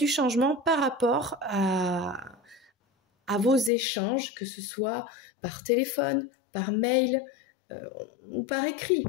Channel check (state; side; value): drops out; right; at 3.7 s